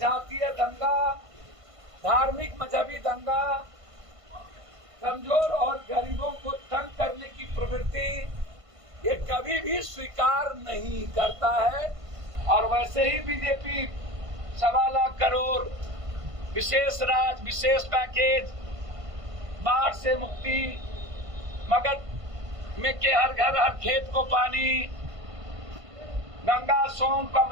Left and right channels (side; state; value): left; late; 1.5 ms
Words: दंगा, धार्मिक मजहबी दंगा, कमजोर और गरीबों को तंग करने की प्रवृत्ति ये कभी भी स्वीकार नहीं करता है। और वैसे ही बीजेपी 1.25 लाख करोड़ विशेष राज, विशेष पैकेज, बाढ़ से मुक्ति, मगध में के हर घर हर खेत को पानी, गंगा, सोन,